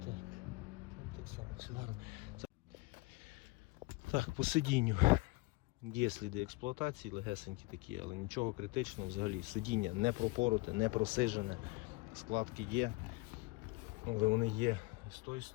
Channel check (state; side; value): quieter; right; 23.6 dB